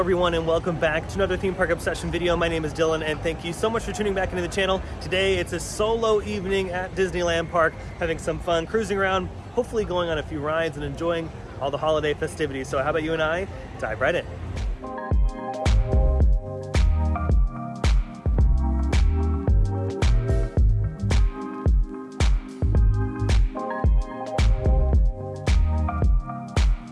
and welcome back to another theme park obsession video. My name is Dylan and thank you so much for tuning back into the channel. Today it's a solo evening at Disneyland Park, having some fun, cruising around, hopefully going on a few rides and enjoying all the holiday festivities. So how about you and I dive right in.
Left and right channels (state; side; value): identical; both; correlation 1.00